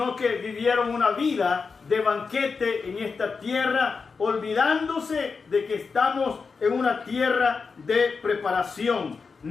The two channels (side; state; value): right; quieter; 4.9 dB